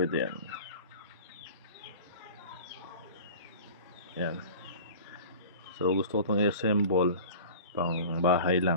yan. Yan. So gusto ko itong i-assemble pang bahay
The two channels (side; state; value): both; inverted; correlation -0.39